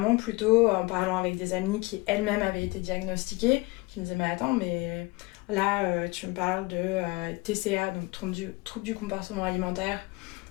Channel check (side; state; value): right; quieter; 24.1 dB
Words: plutôt en parlant avec des amies qui elles-mêmes avaient été diagnostiquées, qui me disaient mais attends, mais là tu me parles de TCA, donc trouble du comportement alimentaire,